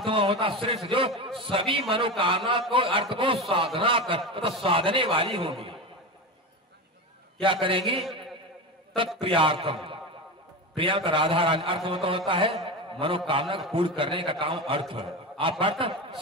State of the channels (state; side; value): normal; both; correlation 0.22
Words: में होता श्रेष्ठ, जो सभी मनोकामना को अर्थ को साधना कर तो साधने वाली होगी। क्या करेंगी तत्प्रियार्थम, प्रिया का राधा रानी अर्थ में तो होता है मनोकामना को पूर्ण करने का काम अर्थ। आप अर्थ